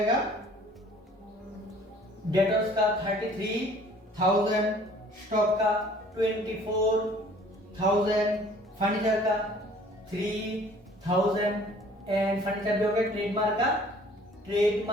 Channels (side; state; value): both; normal; correlation 0.53